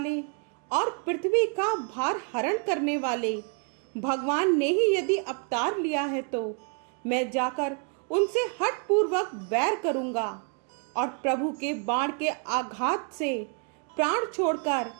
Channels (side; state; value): left; quieter; 37.0 dB